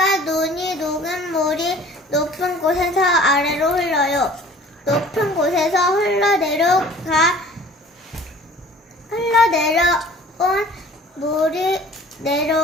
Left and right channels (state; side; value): normal; both; correlation 0.48